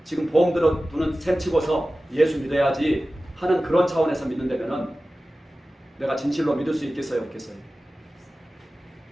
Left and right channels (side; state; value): both; normal; correlation 0.95